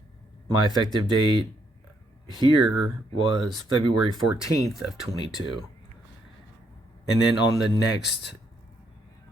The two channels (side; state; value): both; normal; correlation 0.74